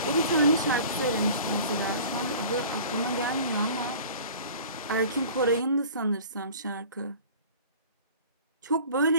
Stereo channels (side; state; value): both; inverted; correlation -0.44